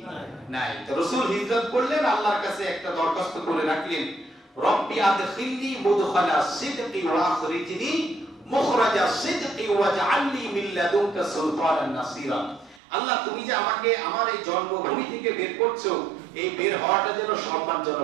নাই। তো রাসূল হিজরত করলেন, আল্লাহর কাছে একটা দরখাস্ত করে রাখলেন, রব্বি আদখিলনি মুদখালা সিদকি ওয়া আখরিজনি মুখরাজা সিদকি ওয়াজআলনি মিন লাদুনকা সুলতানান নাসিরা। আল্লাহ তুমি যে আমাকে আমার এই জন্মভূমি থেকে বের করছো, এই বের হওয়াটা যেন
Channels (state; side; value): drops out; left; at 12.8 s